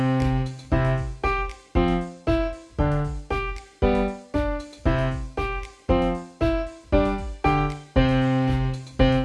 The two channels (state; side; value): identical; both; correlation 1.00